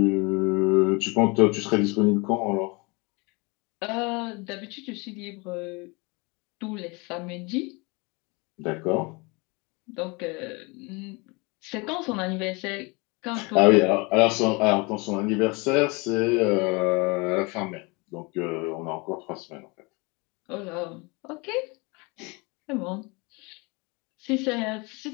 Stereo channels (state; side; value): quieter; right; 28.0 dB